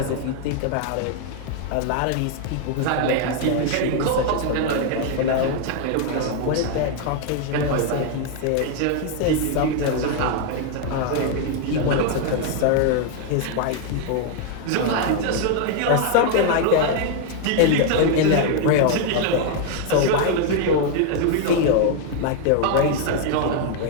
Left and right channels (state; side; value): different; both; correlation 0.00